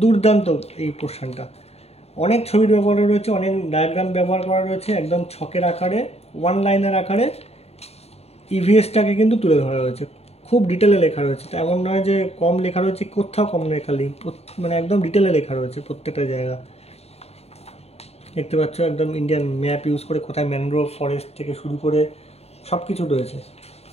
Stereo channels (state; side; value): late; right; 0.30 ms